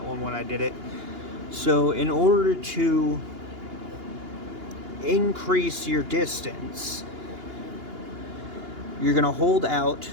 one when I did it. So in order to increase your distance, you're going to hold out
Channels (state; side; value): late; left; 2.8 ms